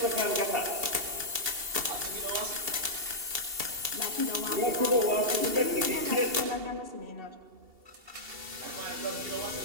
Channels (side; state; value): left; late; 2.7 ms